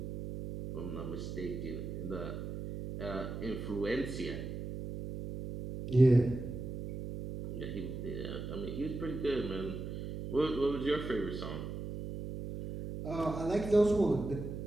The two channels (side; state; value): right; noise; hum, 6 dB below the sound